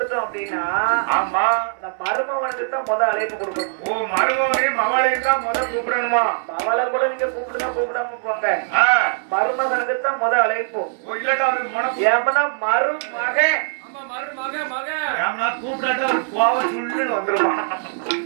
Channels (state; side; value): silent; left; 65 dB below the other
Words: அப்படின்னா அந்த மருமவனுக்கு தான் முத அழைப்பு கொடுக்கணும் மருமவனையும் மவளையும் தான் முத கூப்பிடணுமா மவளை கூட நீங்க கூப்பிடுனா கூப்பிடாம போங்க மருமகனுக்கு தான் முத அழைப்பு ஏமனா மருமகன்